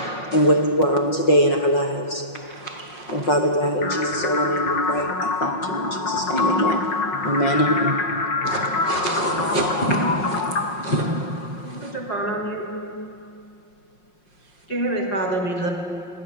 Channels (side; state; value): right; late; 5.5 ms